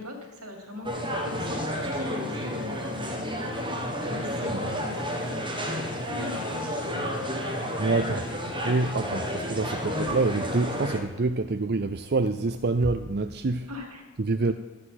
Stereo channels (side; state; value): both; normal; correlation 0.34